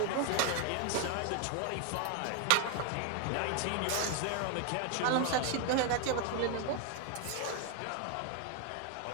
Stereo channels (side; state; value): both; different; correlation 0.01